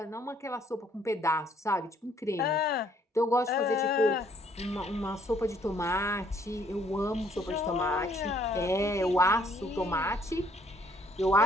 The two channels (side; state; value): both; normal; correlation 0.65